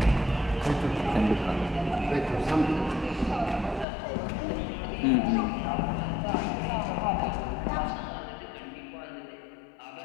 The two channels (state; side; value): drops out; right; at 3.9 s